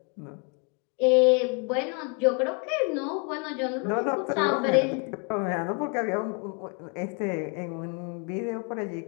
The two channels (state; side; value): quieter; right; 35.8 dB